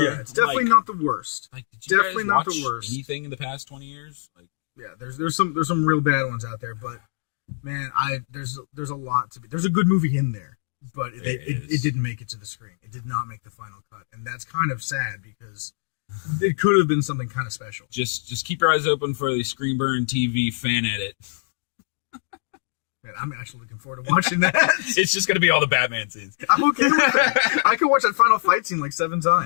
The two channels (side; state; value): right; silent; digital silence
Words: Yeah, it's definitely not the worst. Like, did you definitely guys not watch the worst. Anything in the past 20 years? Like, yeah, there's some real bad ones out there, but man, there's a lot to be. There's a good movie in there. but it didn't make it to the screen. It did not make the final cut, and that's kind of sad because it could have been something kind of special. Just keep your eyes open for the Screen Burn TV fan edit. Man, I'm actually looking forward to watching that. It's just gonna be all the Batman scenes. I'm okay with that. I can watch that final fight scene like 7